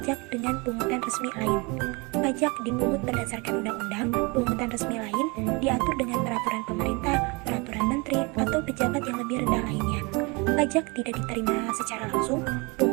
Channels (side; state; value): left; quieter; 28.2 dB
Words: dengan pungutan resmi lain. Pajak dipungut berdasarkan undang-undang, pungutan resmi lain diatur dengan peraturan pemerintah, peraturan menteri, atau pejabat yang lebih rendah lainnya. Pajak tidak diterima secara langsung,